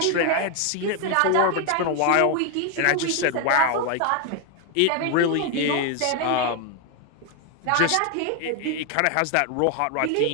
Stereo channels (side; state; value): both; different; correlation 0.01